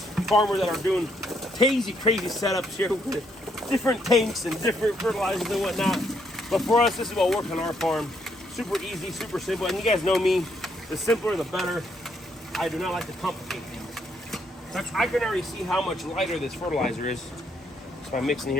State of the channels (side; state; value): both; normal; correlation 0.73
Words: farmers that are doing crazy setups here with different tanks and different fertilizers and whatnot. But for us, this is what works on our farm. Super easy, super simple. And you guys know me, the simpler the better. I do not like to complicate things. I can already see how much lighter this fertilizer is. So I'm mixing